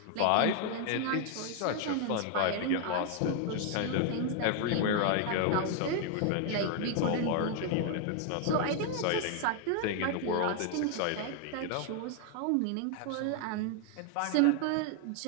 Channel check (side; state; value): both; different; correlation 0.00